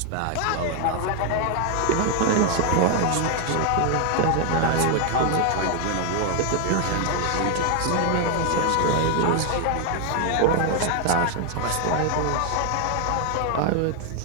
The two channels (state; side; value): different; both; correlation 0.01